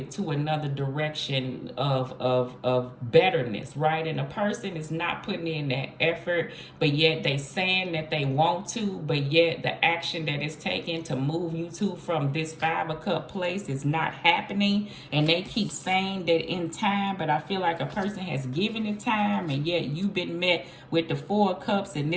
to another direction of betterness, right? And a person is not putting in that effort, but yet they saying that they want to, but yet the action that is taken to move you to from this 5 of Cup place is not happening. And they keep saying that in time, but I feel like a person has given it time, and yet you've been met with the 4 of Cups, and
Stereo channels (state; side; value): identical; both; correlation 1.00